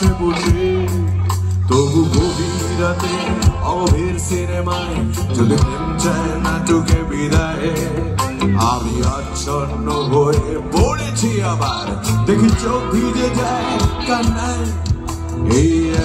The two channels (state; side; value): identical; both; correlation 1.00